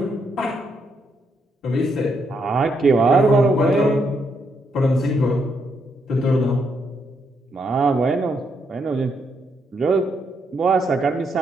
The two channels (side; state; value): both; normal; correlation 0.77